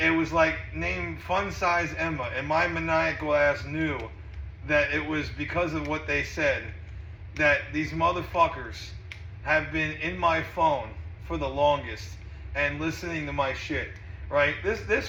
was like named Fun Size Emma, and my maniacal ass knew that it was because of what they said that these motherfuckers have been in my phone for the longest and listening to my shit, right? This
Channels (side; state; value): both; identical; correlation 1.00